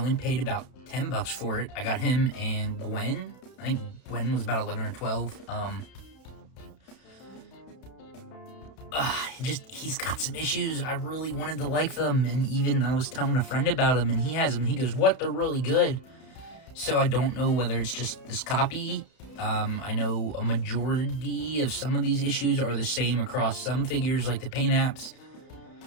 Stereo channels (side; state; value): right; late; 31 ms